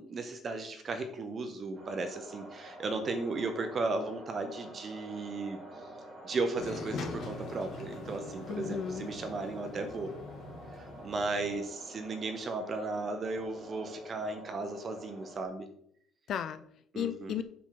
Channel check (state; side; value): normal; both; correlation 0.71